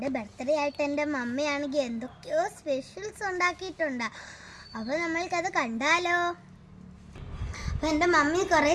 ബർത്ത്ഡേ ആയിട്ട് എൻ്റെ മമ്മിയാണെങ്കിൽ എന്തൊക്കെയോ സ്പെഷ്യൽസ് ഉണ്ടാക്കിയിട്ടുണ്ട്. അപ്പോൾ നമ്മൾക്കത് കണ്ടാലോ? അപ്പം എൻ്റെ മമ്മി കുറേ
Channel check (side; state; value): both; identical; correlation 1.00